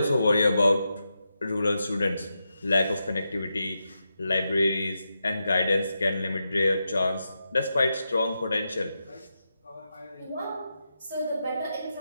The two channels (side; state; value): both; inverted; correlation -0.87